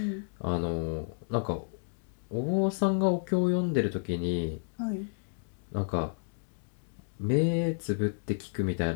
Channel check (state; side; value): silent; right; digital silence